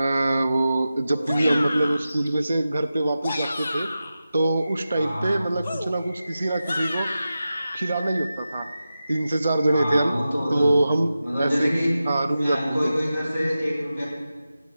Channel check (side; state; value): both; inverted; correlation -0.92